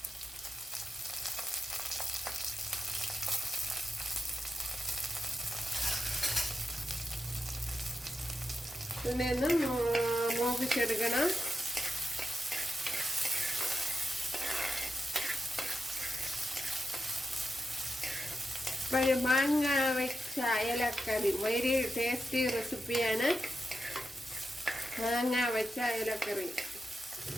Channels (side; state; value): both; normal; correlation 0.89